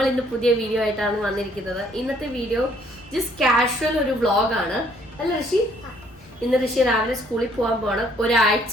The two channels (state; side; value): normal; both; correlation 0.64